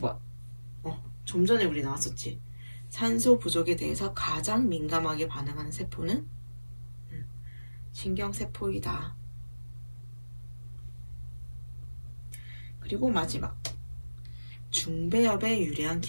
좀 전에 우리 나왔었지. 산소 부족에 대해서 가장 민감하게 반응하는 세포는 신경세포이다. 그리고 마지막. 중배엽에 유리한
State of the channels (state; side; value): inverted; both; correlation -1.00